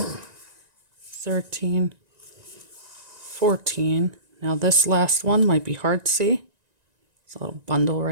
13, 14. Now this last one might be hard to see. It's a little bundle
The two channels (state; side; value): late; left; 1.9 ms